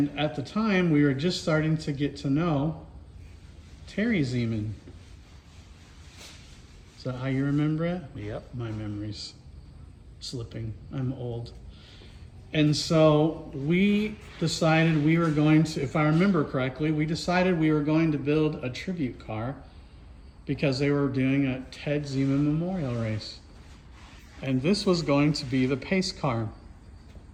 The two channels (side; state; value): both; identical; correlation 1.00